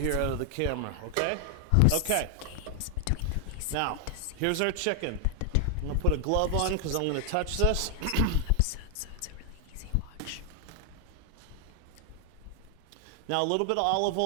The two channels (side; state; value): both; different; correlation 0.00